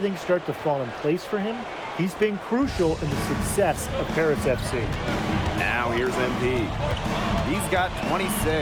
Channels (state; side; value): identical; both; correlation 1.00